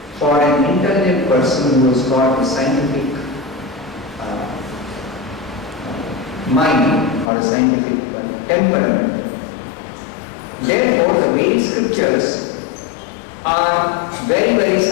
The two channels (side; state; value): right; drops out; at 7.3 s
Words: for an intelligent person who has got a scientific mind or a scientific temperament. Therefore, the Vedic scriptures are very, very